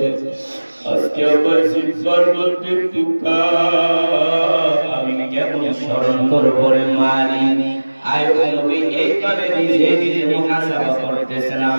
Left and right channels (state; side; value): inverted; both; correlation -1.00